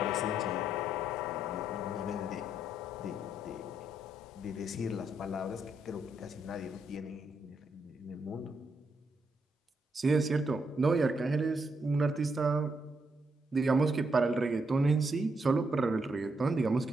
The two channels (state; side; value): normal; both; correlation 0.78